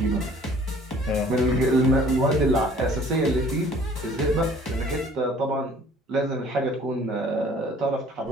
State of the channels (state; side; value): normal; both; correlation 0.53